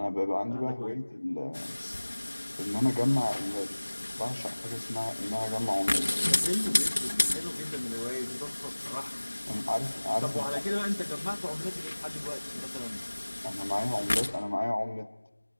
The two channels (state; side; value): inverted; both; correlation -1.00